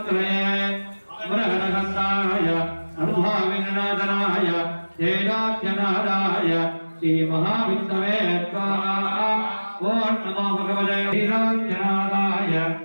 அமரஹரஹரஸ்தாய சர்வாவிநாதனாய ஏலோக்யநாதாய श्री महाविष्णवे स्वाहा. ओम नमो भगवते वीराजनादाय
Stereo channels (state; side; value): inverted; both; correlation -1.00